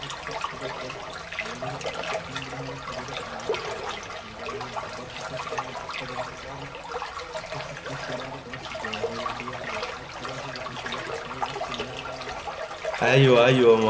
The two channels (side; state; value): both; identical; correlation 1.00